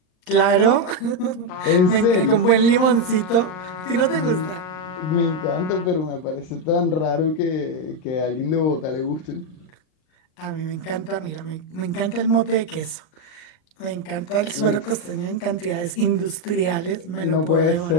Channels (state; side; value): late; right; 38 ms